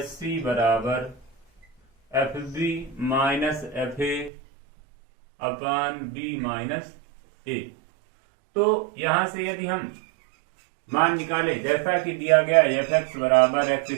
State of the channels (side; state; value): left; drops out; at 4.3 s